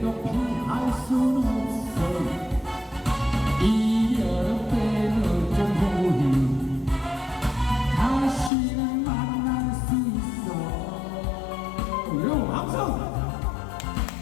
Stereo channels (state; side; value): drops out; right; at 8.5 s